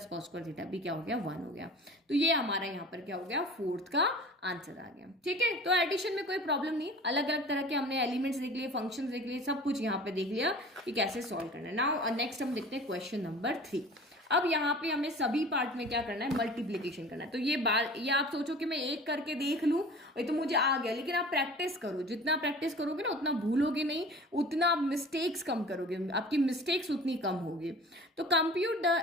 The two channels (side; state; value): both; normal; correlation 0.42